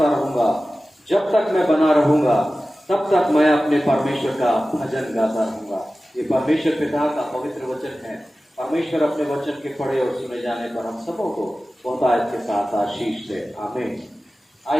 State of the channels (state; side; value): normal; both; correlation 0.96